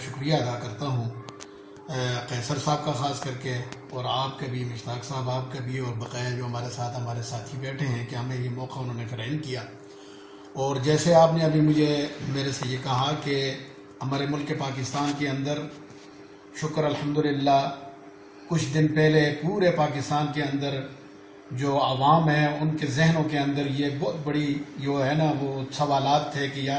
شکریہ ادا کرتا ہوں، قیصر صاحب کا خاص کر کے، اور آپ کا بھی، مشتاق صاحب آپ کا بھی، اور بقیہ جو ہمارے ساتھی بیٹھے ہیں کہ ہمیں یہ موقع انہوں نے فراہم کیا. اور جیسے آپ نے ابھی میرے سے یہ کہا کہ ہمارے ملک پاکستان کے اندر شکر الحمدللہ کچھ دن پہلے پورے پاکستان کے اندر جو عوام ہیں ان کے ذہنوں کے اندر یہ بہت بڑی جو ہے نا وہ سوالات تھے کہ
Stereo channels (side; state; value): both; identical; correlation 1.00